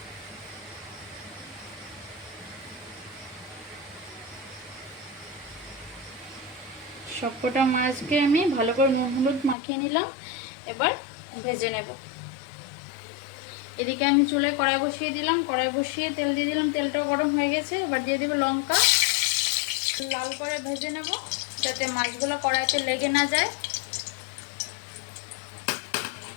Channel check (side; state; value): right; drops out; at 9.6 s